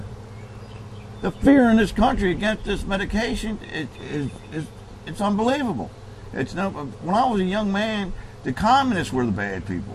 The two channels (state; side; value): identical; both; correlation 1.00